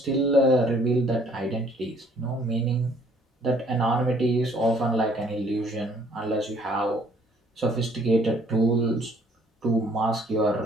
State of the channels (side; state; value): both; normal; correlation 0.61